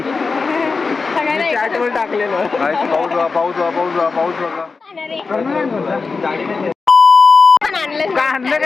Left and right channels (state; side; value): quieter; right; 4.5 dB